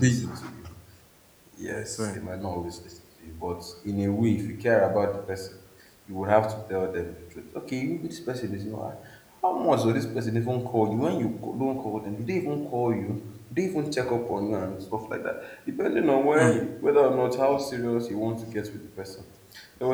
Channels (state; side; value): identical; both; correlation 1.00